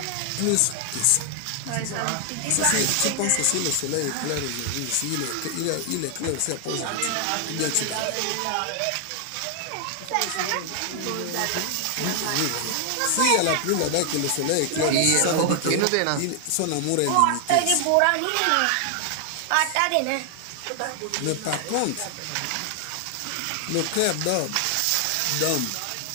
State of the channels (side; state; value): both; different; correlation 0.00